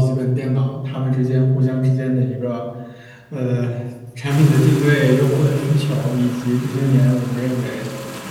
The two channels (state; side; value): identical; both; correlation 1.00